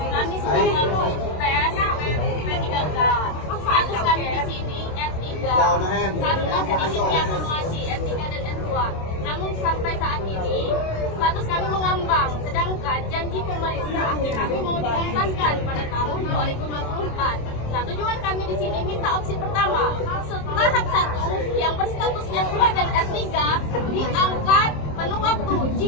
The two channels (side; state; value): right; late; 27 ms